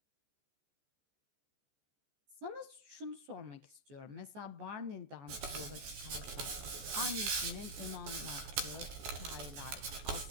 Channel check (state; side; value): late; left; 14 ms